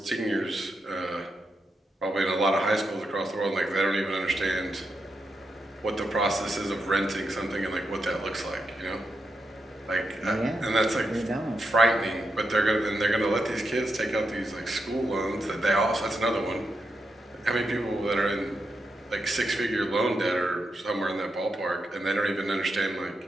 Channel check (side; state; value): both; normal; correlation 0.85